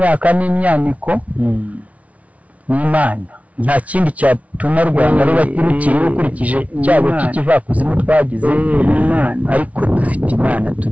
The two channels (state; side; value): late; left; 0.067 ms